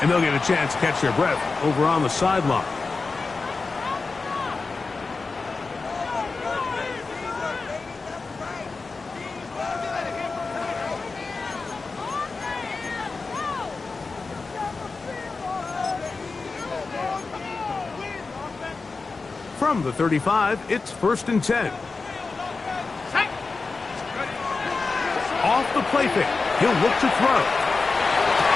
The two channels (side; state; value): right; quieter; 4.1 dB